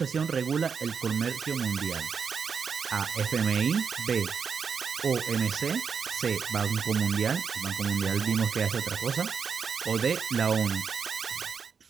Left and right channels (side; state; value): left; quieter; 6.3 dB